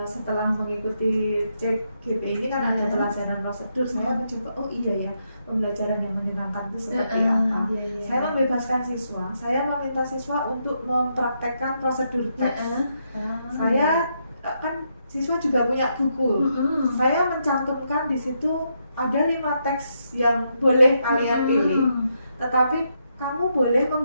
Setelah mengikuti CGP ini kan ada pelajaran prosedur, saya mencoba pembelajaran yang menyenangkan itu seperti apa. Saya membebaskan siswa, saya meminta siswa untuk mempraktekkan prosedur teks. Saya kan siswa juga punya buku. Saya mencantumkan di situ ada 5 teks yang boleh kalian pilih. Tetapi kamu boleh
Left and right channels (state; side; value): inverted; both; correlation -0.80